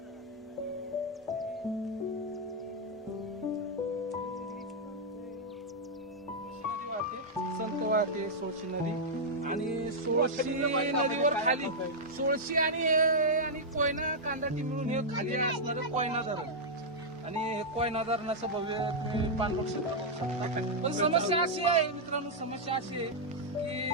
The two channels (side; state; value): both; normal; correlation -0.05